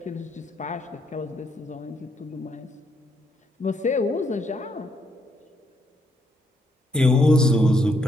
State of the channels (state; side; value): normal; both; correlation 0.75